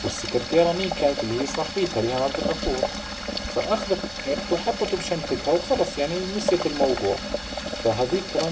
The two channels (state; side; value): identical; both; correlation 1.00